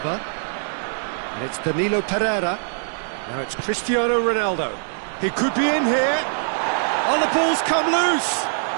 And it's Danilo Pereira. Now it's Cristiano Ronaldo. He could be in here. Oh, the ball's come loose.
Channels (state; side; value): silent; left; 60 dB below the other